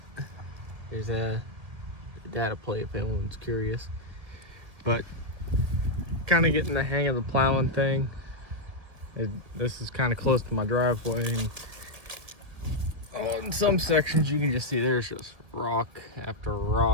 There's a data plate if anyone's curious. But kind of getting the hang of the plowing thing. This is kind of close to my driveway, and in some sections you can just see there's just rock after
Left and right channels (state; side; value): late; left; 1.7 ms